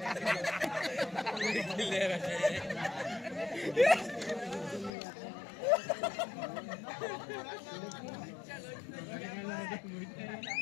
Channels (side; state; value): right; drops out; at 4.9 s